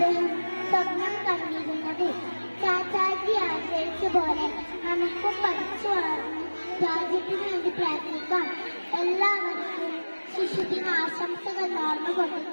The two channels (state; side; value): inverted; both; correlation -1.00